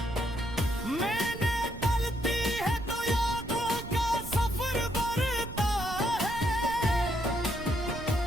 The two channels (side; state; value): right; noise; rumble, 11 dB below the sound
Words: मैंने तलती है तो यादों का सफर बढ़ता है,